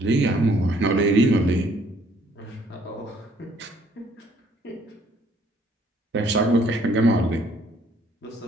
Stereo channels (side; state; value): both; normal; correlation 0.63